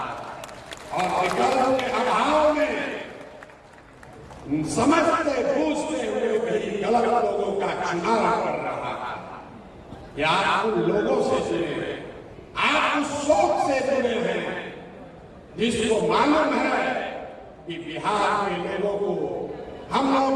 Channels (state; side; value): identical; both; correlation 1.00